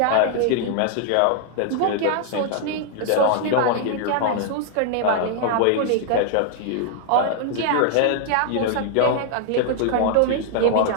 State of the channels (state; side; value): different; both; correlation 0.00